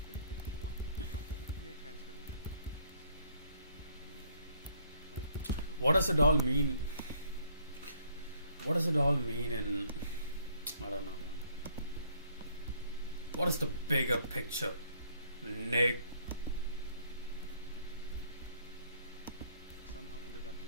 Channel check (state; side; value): inverted; both; correlation -0.65